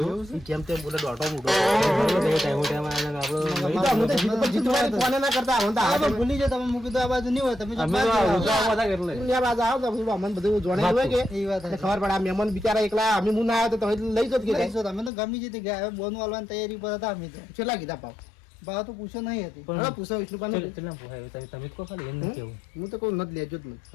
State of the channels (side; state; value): right; drops out; at 15.1 s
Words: ઈ જેમ તેમ બોલે દોઢો મૂઢો. ટાઈમ ટાઈમ આને આપણો એ તો અમે તો જીત પર જીતવાની કોને ના કરતા અમે તો આ તો આ ભૂલી જાય તમે મૂકી દો આ બાજુ નહીં હોય તમે જો અમે બાજુ તો આવો. ઉતરાવા હતા એટલે દુનિયા બાજુ આવો તો બધું અમને બધું જોડાઈ હોય કે એ વાત એટલે છે. ખબર પડે આ મહેમાન બિચારા એકલા અમે હું ના આવ્યો તો તમે લઈ જત કે ગાય? લઈશું તમે તો ગમી જતી ગયા હવે બોનું હાલવાની તૈયારી પર હતા અમે તો. કેટલા કીધા પાવ? ભાવ તો પૂછો નહીં હતી. પણ- હવે પૂછો વિષ્ણુપાને. કેટલા પોહાય તમે તમે જ કહો ખાલી એમ નહીં કેવું. હું તો કહું નથી લેજો જ નથી.